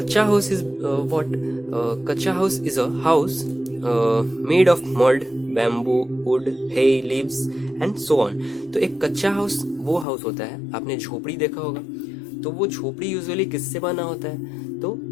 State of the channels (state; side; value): drops out; right; at 10.1 s